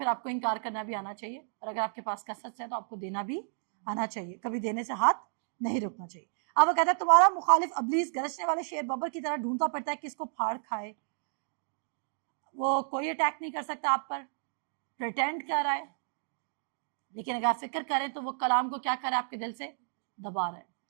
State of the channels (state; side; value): silent; left; digital silence